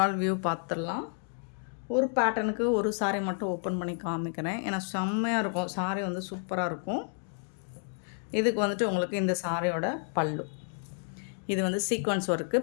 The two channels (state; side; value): silent; right; 57 dB below the other